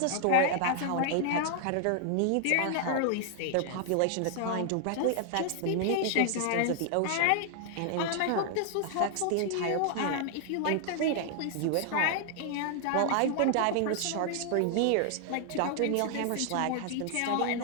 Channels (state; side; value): different; both; correlation 0.00